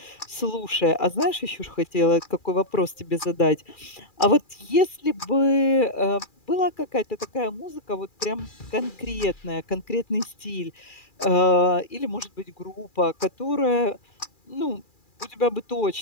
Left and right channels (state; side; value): late; right; 2.4 ms